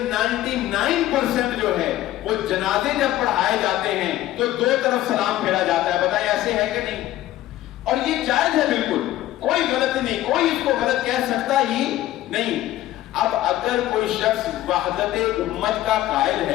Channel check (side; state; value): right; quieter; 14.5 dB